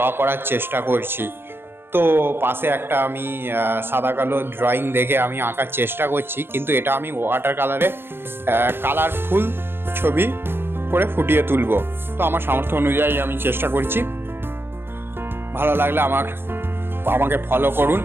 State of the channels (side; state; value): left; late; 0.10 ms